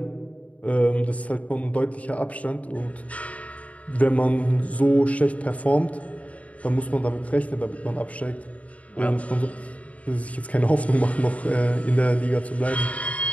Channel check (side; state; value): right; late; 0.068 ms